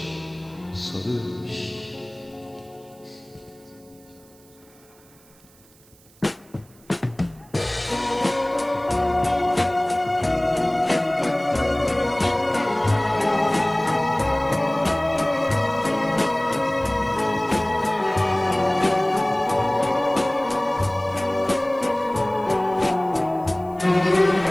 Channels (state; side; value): noise; right; hiss, 28 dB below the sound